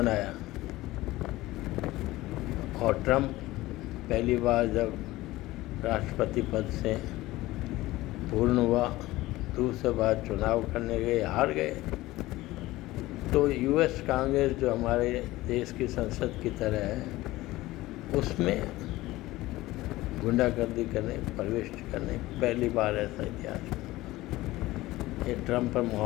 और ट्रंप पहली बार जब राष्ट्रपति पद से पूर्ण हुआ, दूसरी बार चुनाव करने गए, हार गए। तो यूएस कांग्रेस जो हमारे देश की संसद की तरह है, उसमें गुंडागर्दी करने, प्रवेश करने पहली बार ऐसा इतिहास में। ये ट्रंप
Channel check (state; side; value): quieter; right; 18.0 dB